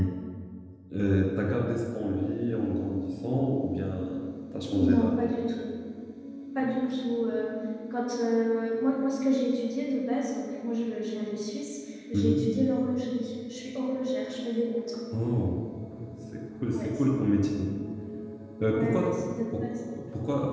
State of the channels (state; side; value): identical; both; correlation 1.00